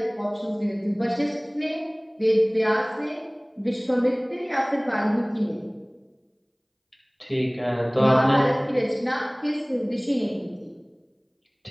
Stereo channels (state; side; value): identical; both; correlation 1.00